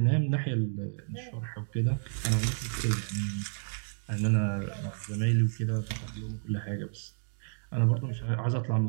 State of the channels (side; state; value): left; silent; digital silence